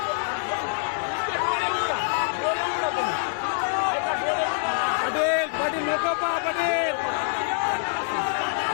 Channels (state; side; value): silent; right; 60 dB below the other